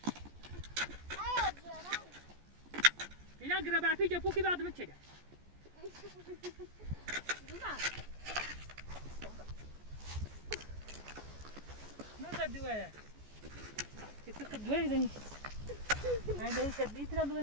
اینا گربه پیچ پوکی بعد میچگه. نه دوره. کسی دوره زنی. این داری شد نیتر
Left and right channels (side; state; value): left; late; 14 ms